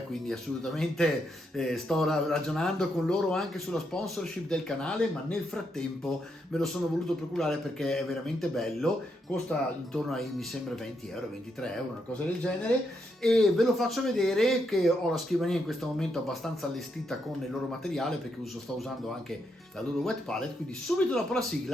quindi assolutamente sto ragionando con loro anche sulla sponsorship del canale, ma nel frattempo me lo sono voluto procurare perché è veramente bello. Costa intorno ai, mi sembra, 20 euro, 23 euro, una cosa del genere, e ve lo faccio vedere che ho la scrivania in questo momento abbastanza allestita con il loro materiale, perché sto usando anche la loro wet palette. Quindi subito dopo la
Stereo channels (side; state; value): both; normal; correlation 0.80